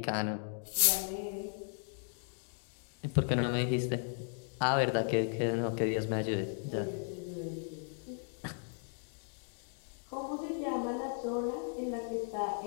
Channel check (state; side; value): silent; right; 54 dB below the other